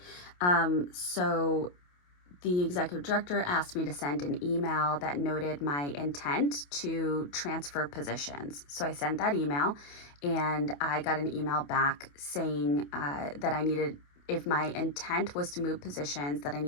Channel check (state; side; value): late; right; 28 ms